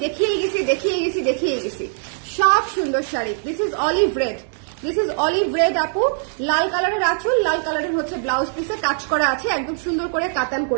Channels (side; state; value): left; silent; 62 dB below the other